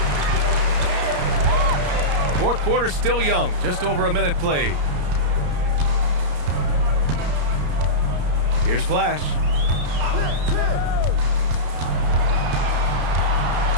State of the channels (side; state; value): left; late; 34 ms